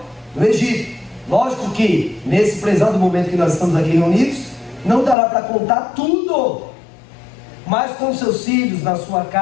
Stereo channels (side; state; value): right; drops out; at 5.2 s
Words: no Egito. Lógico que, nesse prezado momento que nós estamos aqui reunidos, não dará para contar tudo. Mas com seus filhos, na sua